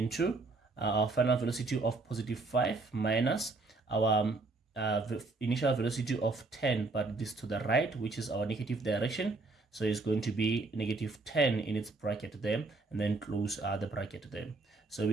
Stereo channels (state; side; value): quieter; left; 3.5 dB